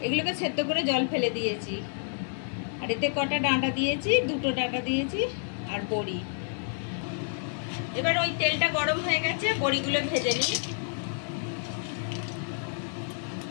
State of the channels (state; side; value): silent; right; digital silence